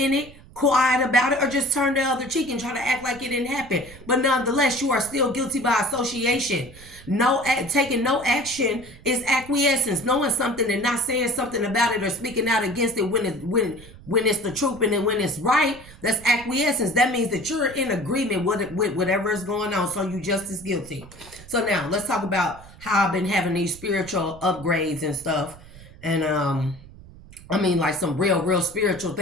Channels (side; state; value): right; noise; rumble, 20 dB below the sound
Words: it, quiet about it, or just turn the other cheek and try to act like it didn't happen. But nonetheless, you are still guilty by association. Taking no action is acquiescence. Knowing something and not saying something about it or speaking out against it when it's the truth and then when it's right, that's acquiescence. That means that you're in agreement with whatever is going on. So you just as guilty. So now let's talk about how I've been having these spiritual upgrades and stuff. And I mean, like some real spiritual